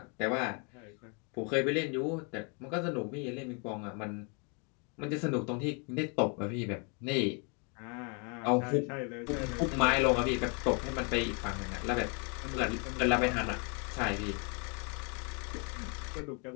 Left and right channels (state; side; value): quieter; right; 35.7 dB